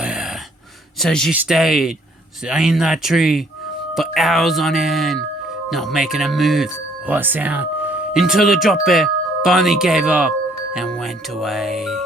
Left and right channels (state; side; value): normal; both; correlation 0.63